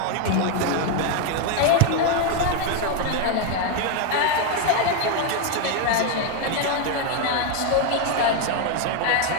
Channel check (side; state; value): both; different; correlation 0.01